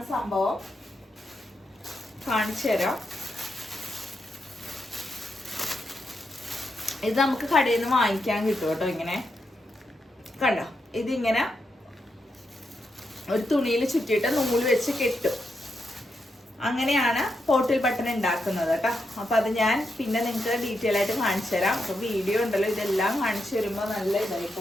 സംഭവം, കാണിച്ചു തരാം. ഇത് നമുക്ക് കടയിൽ നിന്ന് വാങ്ങിക്കാൻ കിട്ടും കേട്ടോ. ഇങ്ങനെ കണ്ടോ, ഇതിങ്ങനെ ഒരു തുണിയിൽ ചുറ്റിയിട്ട് നൂല് വെച്ച് കെട്ടും. അങ്ങനെയാണ് പോട്ടിൽ ബട്ടൺ ഉണ്ടാക്കുന്നത് കേട്ടോ. അപ്പൊ അത് ഞാൻ പിന്നെ നിങ്ങൾക്ക് ഡീറ്റെയിൽ ആയിട്ട് കാണിച്ചു തരാം. അപ്പൊ വീഡിയോ ഉണ്ടല്ലോ, ഇതെല്ലാം കാണിച്ചു വരുമ്പോ നല്ല ഇതായി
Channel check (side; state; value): both; normal; correlation 0.83